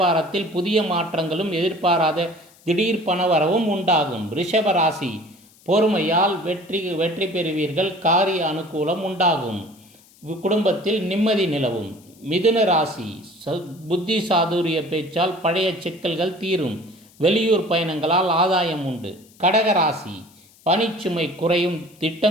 புதிய மாற்றங்களும் எதிர்பாராத திடீர் பணவரவும் உண்டாகும். ரிஷப ராசி, பொறுமையால் வெற்றி பெறுவீர்கள், காரிய அனுகூலம் உண்டாகும், குடும்பத்தில் நிம்மதி நிலவும். மிதுன ராசி, புத்தி சாதுரிய பேச்சால் பழைய சிக்கல்கள் தீரும், வெளியூர் பயணங்களால் ஆதாயம் உண்டு. கடக ராசி, பணிச்சுமை குறையும்,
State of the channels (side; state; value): left; noise; hiss, 28 dB below the sound